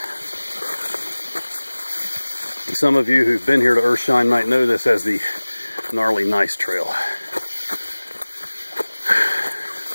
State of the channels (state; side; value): inverted; both; correlation -1.00